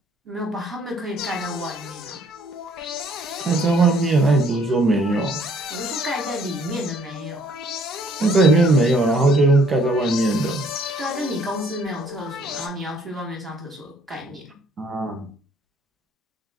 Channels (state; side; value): normal; both; correlation 0.62